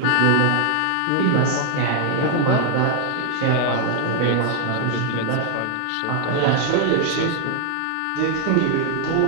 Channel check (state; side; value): different; both; correlation 0.00